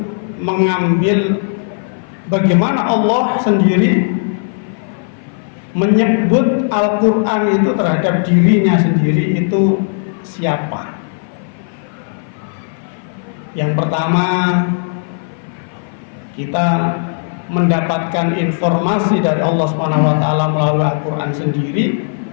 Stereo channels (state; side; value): silent; right; 57 dB below the other